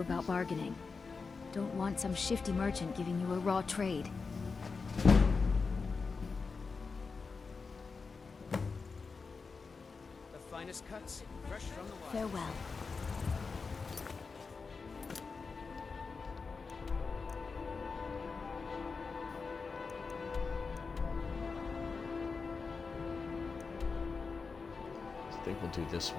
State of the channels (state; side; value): quieter; right; 4.7 dB